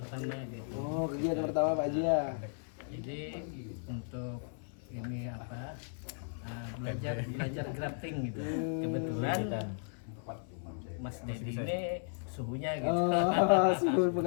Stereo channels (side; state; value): right; silent; 54 dB below the other